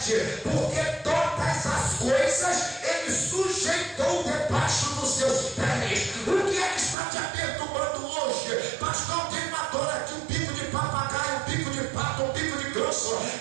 porque todas as coisas Ele sujeitou debaixo dos seus pés. O que é que está te perturbando hoje? Pastor, tem uma dor aqui, um bico de papagaio, um bico de pato, um bico de grosso.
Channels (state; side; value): drops out; left; at 7.0 s